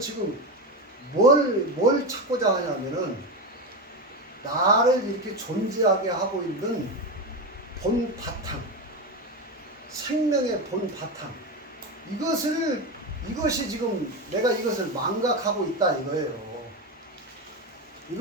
뭘 찾고자 하냐면은 나를 이렇게 존재하게 하고 있는 본 바탕, 생명의 본 바탕. 이것이 지금 내가 이것을 망각하고 있다 이거예요.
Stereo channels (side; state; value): both; normal; correlation 0.17